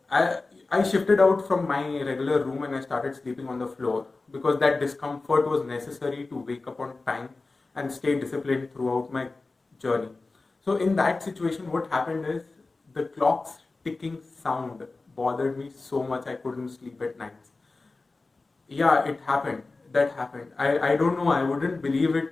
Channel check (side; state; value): right; quieter; 3.6 dB